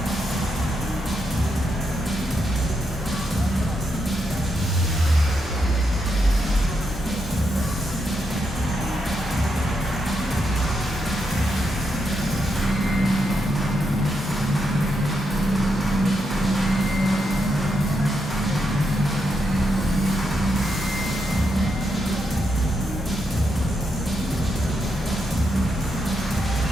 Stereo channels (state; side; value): normal; both; correlation 0.82